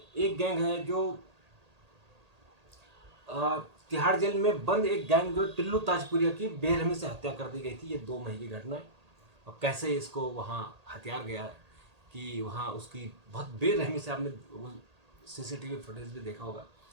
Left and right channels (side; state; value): left; late; 1.8 ms